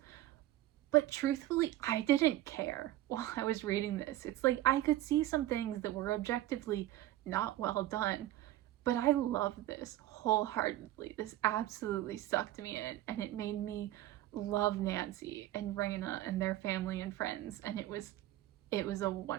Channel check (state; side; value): quieter; left; 14.5 dB